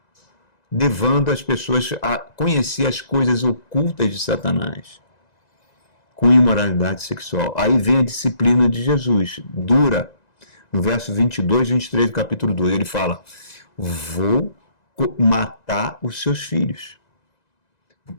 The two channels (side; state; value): right; late; 1.9 ms